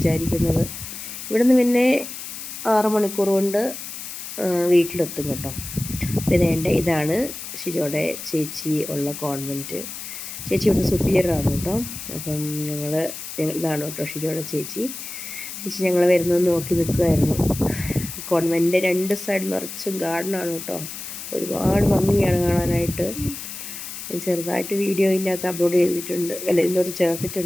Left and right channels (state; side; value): noise; left; hiss, 9 dB below the sound